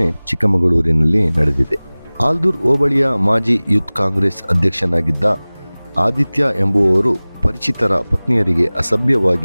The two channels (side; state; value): both; inverted; correlation -1.00